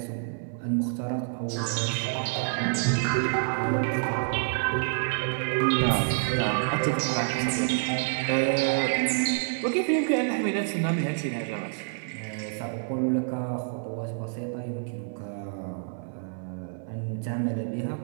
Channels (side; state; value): left; silent; 59 dB below the other